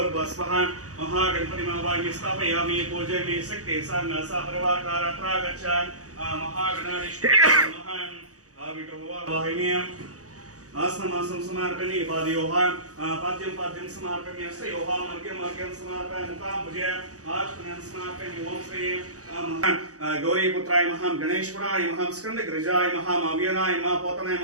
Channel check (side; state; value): left; late; 0.66 ms